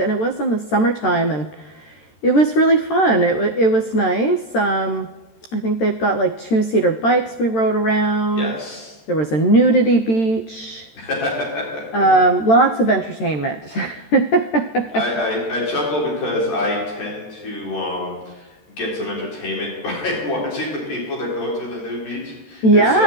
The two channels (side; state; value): right; late; 13 ms